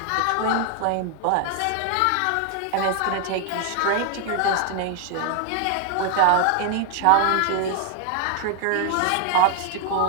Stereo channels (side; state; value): both; different; correlation 0.00